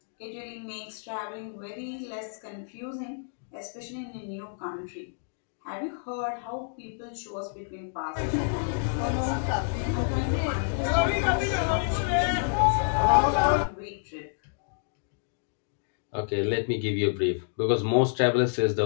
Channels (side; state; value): right; silent; digital silence